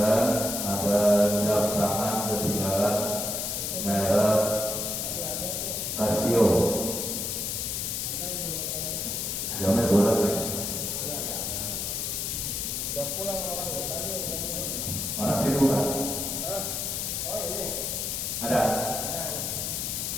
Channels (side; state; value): left; noise; hiss, 2 dB below the sound